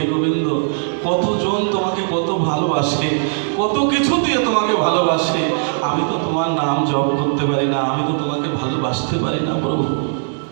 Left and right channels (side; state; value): left; silent; digital silence